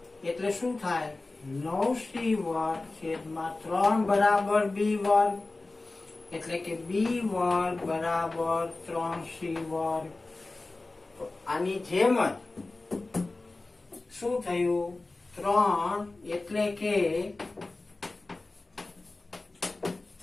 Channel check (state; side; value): quieter; right; 3.2 dB